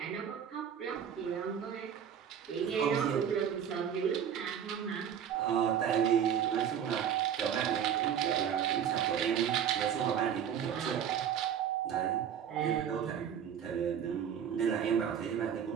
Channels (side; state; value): left; quieter; 8.7 dB